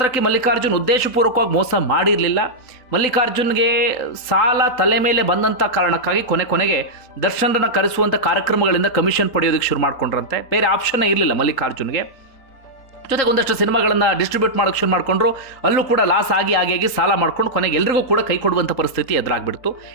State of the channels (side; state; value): right; late; 3.8 ms